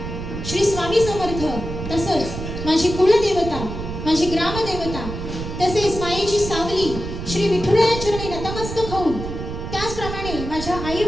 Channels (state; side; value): noise; right; rumble, 7 dB below the sound